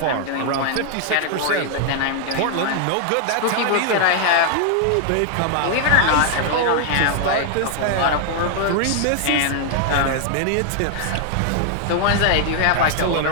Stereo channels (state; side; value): different; both; correlation 0.00